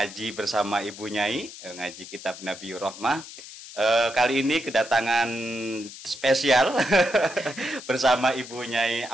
bersama Ibu Nyai, ngaji kitab Nabiyur Rahmah. Kali ini kedatangan spesial bersama Ibu Nyai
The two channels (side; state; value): left; noise; hiss, 14 dB below the sound